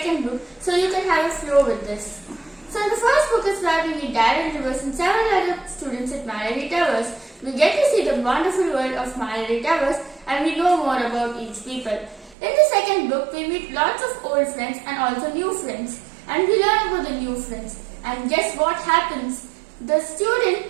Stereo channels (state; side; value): drops out; left; at 12.4 s